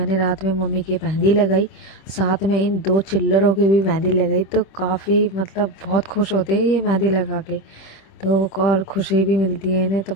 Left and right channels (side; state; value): right; late; 26 ms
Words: रात में मम्मी की मेहंदी लगाई, साथ में इन 2 चिल्लरों की भी मेहंदी लगाई। तो काफ़ी मतलब बहुत खुश होते हैं ये मेहंदी लगा के, तो और खुशी भी मिलती है इन्हें। तो